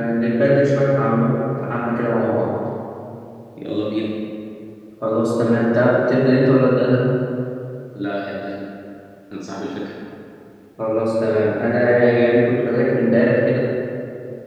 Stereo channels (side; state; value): both; identical; correlation 1.00